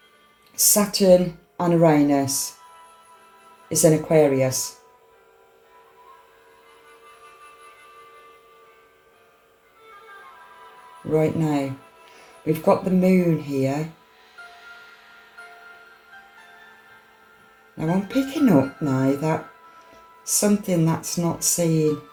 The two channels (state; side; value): identical; both; correlation 1.00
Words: Saturn and Uranus is in Aquarius. Right now. We've got the moon here. Now I'm picking up now that something that's not seen,